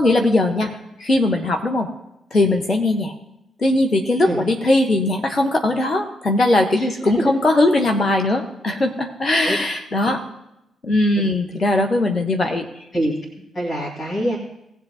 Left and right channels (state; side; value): normal; both; correlation 0.77